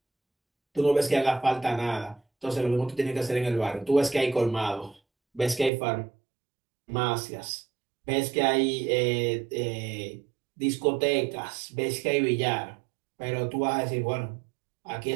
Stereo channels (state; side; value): drops out; left; at 5.7 s